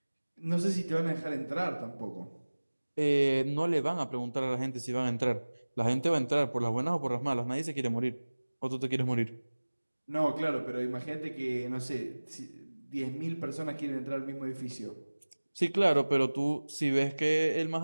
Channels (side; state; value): both; inverted; correlation -1.00